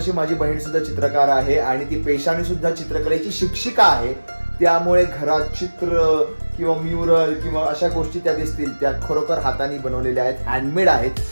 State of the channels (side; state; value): both; inverted; correlation -1.00